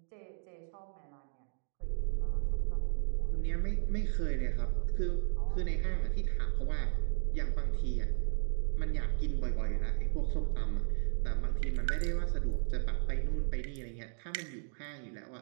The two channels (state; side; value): silent; left; 55 dB below the other